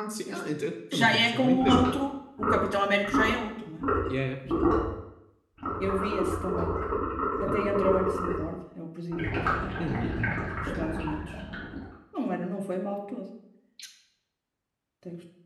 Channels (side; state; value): both; identical; correlation 1.00